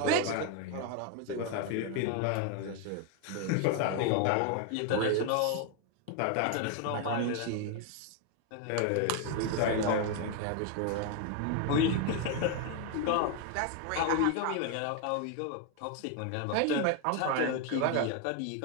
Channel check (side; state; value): both; different; correlation 0.01